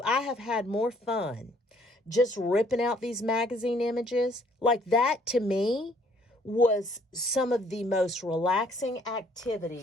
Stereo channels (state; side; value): normal; both; correlation 0.63